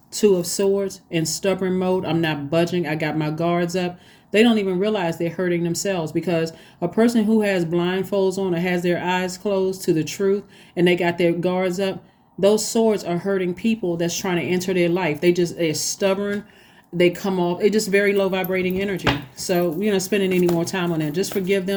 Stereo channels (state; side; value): identical; both; correlation 1.00